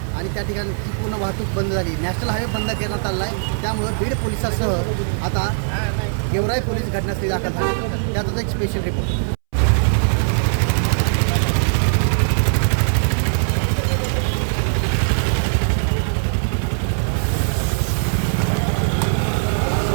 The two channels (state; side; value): silent; left; 66 dB below the other